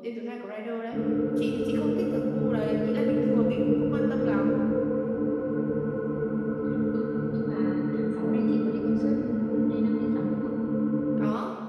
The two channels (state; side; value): identical; both; correlation 1.00